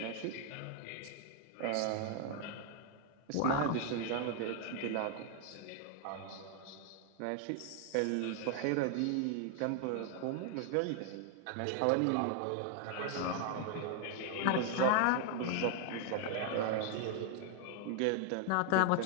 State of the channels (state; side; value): different; both; correlation 0.00